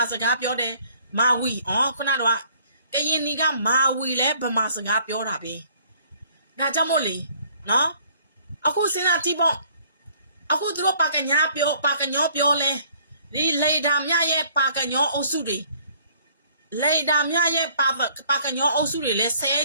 ာစကားပြောတယ်မာဝီခုနတော့ကရင်နီကမာဝီလဲဗမာစကားပြောတာပဲဒါကြောင့်မို့လေနော်အခုစဉ်းစားကြည့်ပေါ့အခုသူတို့ပါကညာပြောပါကညောပြောလဲဒီလေဒါမြရဲ့ပါကညောအုပ်စုတွေလေဒါမြရဲ့ပါကညောအုပ်စုတွေလဲဆဲ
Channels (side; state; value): both; inverted; correlation -0.59